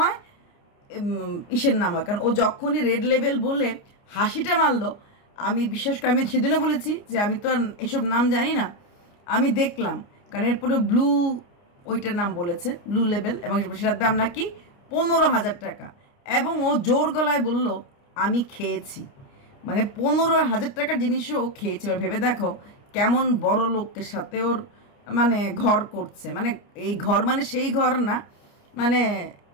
ইসের নাম হয়। কারণ ও যখনই রেড লেভেল বলে হাসিটা মারলো, আমি বিশেষ করে আমি সেদিনও বলেছি যে আমি তো আর এসব নাম জানি না, আমি দেখলাম। কারণ এরপরে ব্লু ওইটার নাম বলেছে, ব্লু লেভেল, এবং সেটার দাম নাকি 15,000 টাকা। এবং ও জোর গলায় বলল আমি খেয়েছি, মানে 15,000 টাকার জিনিসও ও খেয়েছে। এবার ভেবে দেখো কেমন বড় লোকের সাথে ওর মানে ঘর করছে, মানে এই ঘর মানে সেই ঘর না, মানে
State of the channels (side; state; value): right; late; 29 ms